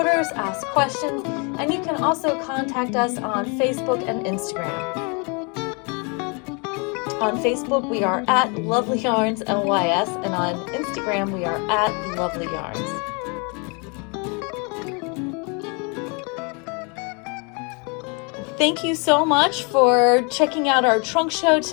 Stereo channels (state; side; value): quieter; right; 33.4 dB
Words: ask questions, and you can also contact us on Facebook and Instagram. On Facebook, we are at Lovelyarns LYS, and on Instagram, we are at Lovelyarns. Thank you so much for checking out our trunk show